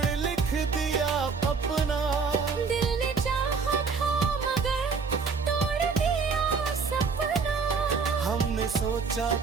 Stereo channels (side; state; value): left; quieter; 5.2 dB